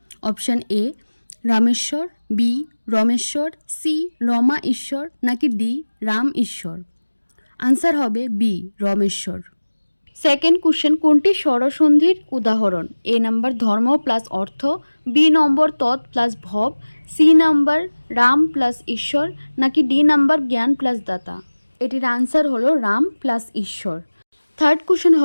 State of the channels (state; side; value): inverted; both; correlation -1.00